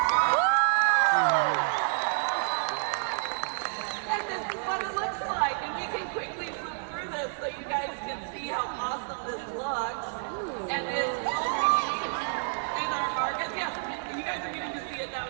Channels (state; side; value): silent; left; digital silence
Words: And this is what it looks like. And we can quickly flip through this so you guys can see how awesome this looks. And this will be in our market. Yes, you guys are getting to see it now